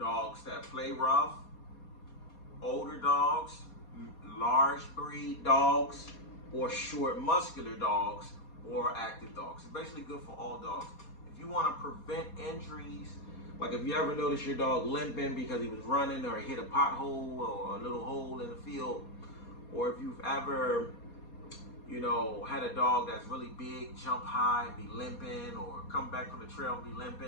that play rough, older dogs, large breed dogs, or short muscular dogs, or active dogs. It's basically good for all dogs. If you want to prevent injuries, like if you ever notice your dog limping because he was running or hit a pothole or a little hole in the field, or if you've ever, had a dog that's really big, jump high and be limping, or come back from the trail and be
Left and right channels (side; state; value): right; late; 4.2 ms